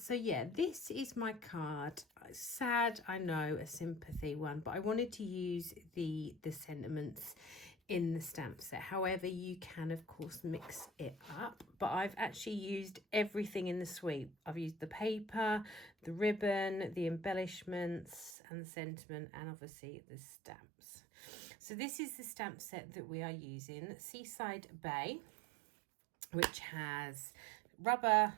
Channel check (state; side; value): drops out; left; at 18.4 s